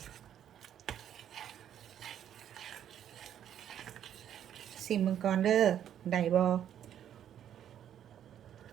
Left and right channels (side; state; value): left; quieter; 10.1 dB